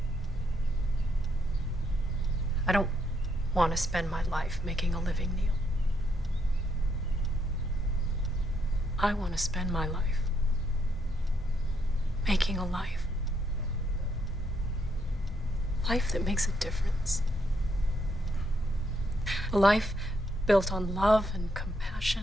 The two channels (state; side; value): normal; both; correlation 0.76